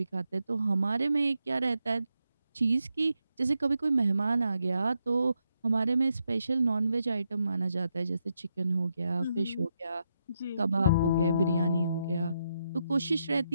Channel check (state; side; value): inverted; both; correlation -0.82